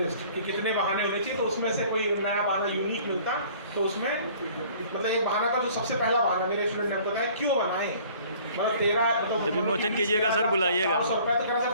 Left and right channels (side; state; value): both; inverted; correlation -0.52